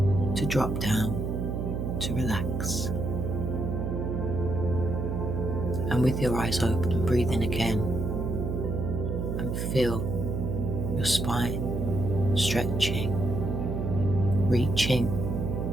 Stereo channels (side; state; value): right; noise; hum, 2 dB below the sound